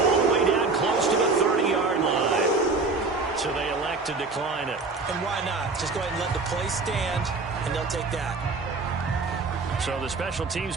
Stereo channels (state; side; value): quieter; left; 3.9 dB